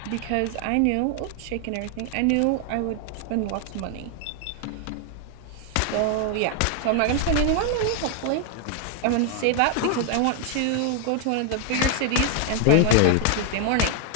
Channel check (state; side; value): different; both; correlation 0.00